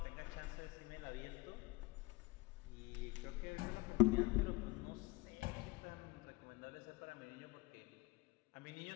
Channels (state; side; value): quieter; right; 21.5 dB